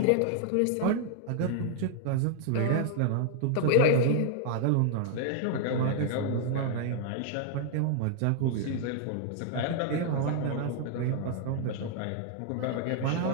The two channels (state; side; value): different; both; correlation 0.00